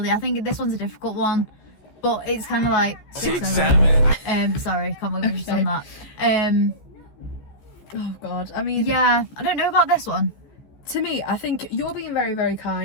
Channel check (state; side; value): late; right; 14 ms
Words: I think this one's a difficult one, but it's kind of like 6-7. Sorry, can't believe we just done that. Oh God, I mean, yeah, I don't know about this one. To me, I think you're being very, very